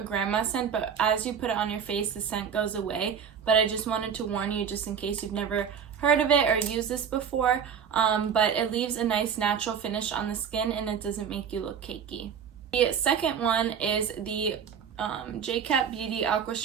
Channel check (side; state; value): left; quieter; 7.4 dB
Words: grandma scent, but as you put it on your face, the scent goes away. But I just wanted to warn you, just in case you've never heard of it or used this before, but it leaves a nice natural finish on the skin, and it doesn't make you look cakey. The second one is the Jcat Beauty